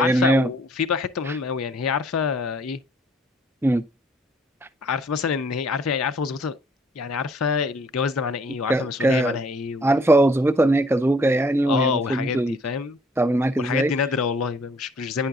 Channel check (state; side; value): normal; both; correlation 0.61